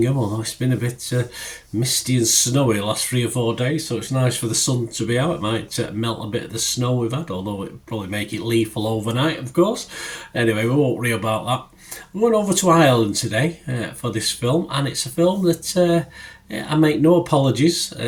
although it's been a bit misty and snowy the last 3 or 4 days, so it's nice for the sun to be out. It might melt a bit of the snow we've had, although it'll probably make it lethal overnight, of course. Anyway, we won't worry about that. We're going over to Ireland today for this film, and it's a film that I make no apologies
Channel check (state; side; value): identical; both; correlation 1.00